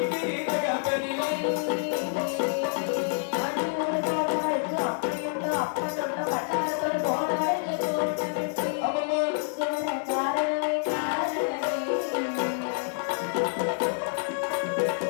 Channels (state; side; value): silent; right; digital silence